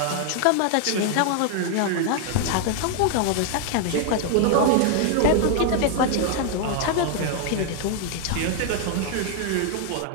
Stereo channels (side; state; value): both; different; correlation 0.00